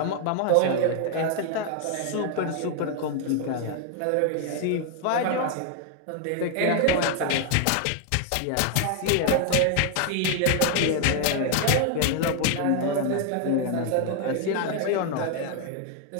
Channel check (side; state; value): both; different; correlation 0.00